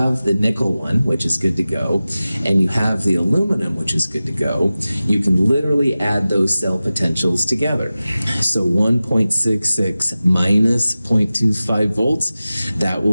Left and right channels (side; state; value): both; inverted; correlation -0.96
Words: the nickel one, which is good to go, and you have the aluminum, which is good to go, you can literally add those cell potentials together. So 1.66 minus 0.25 volts, that